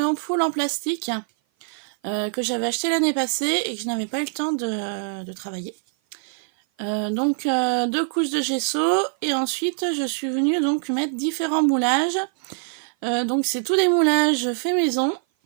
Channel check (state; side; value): silent; left; 55 dB below the other